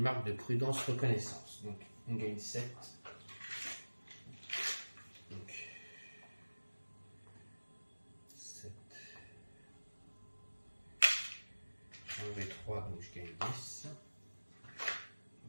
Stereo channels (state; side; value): inverted; both; correlation -1.00